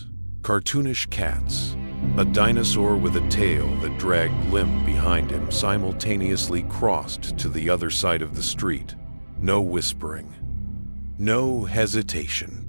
cartoonish cats, a dinosaur with a tail that dragged limp behind him simultaneously crossed to the other side of the street. No whispering, no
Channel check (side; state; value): both; inverted; correlation -1.00